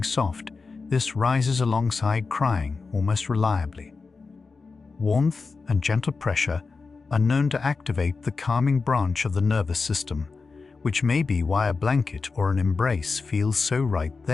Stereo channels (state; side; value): quieter; right; 4.4 dB